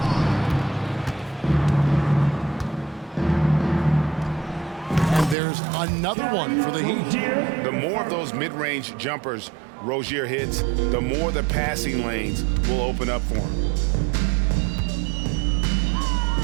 And there's another one for the Heat. The more of those mid-range jumpers Rozier hits, the more the passing lanes will open up for him.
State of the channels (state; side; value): drops out; left; at 5.4 s